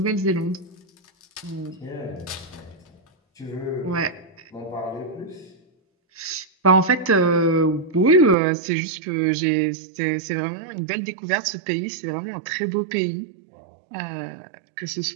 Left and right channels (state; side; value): drops out; left; at 8.3 s